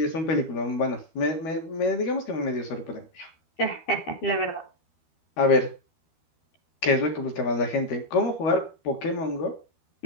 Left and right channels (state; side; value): late; right; 12 ms